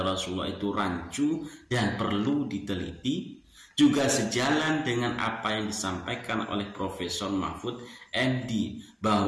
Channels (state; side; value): identical; both; correlation 1.00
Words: Rasulullah itu rancu dan perlu diteliti. Juga sejalan dengan apa yang disampaikan oleh Profesor Mahfud MD